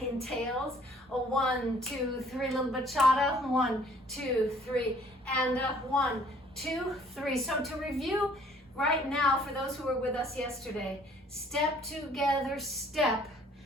entails. A 1, 2, 3, little bachata, 1, 2, 3, and 1, 2, 3. So to review right now, for those who were with us yesterday, step together, step.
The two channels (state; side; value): normal; both; correlation 0.57